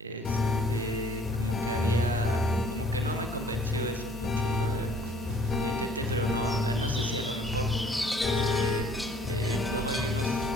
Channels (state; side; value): normal; both; correlation 0.56